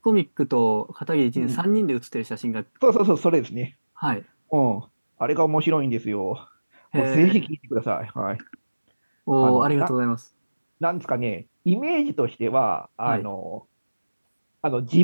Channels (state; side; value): inverted; both; correlation -1.00